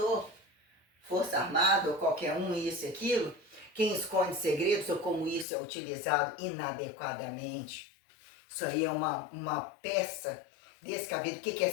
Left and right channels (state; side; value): drops out; right; at 5.5 s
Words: Força Armada ou qualquer um, isso e aquilo? Quem esconde segredos ou como isso é utilizado inadequadamente? Isso aí é uma peça descabida. O que é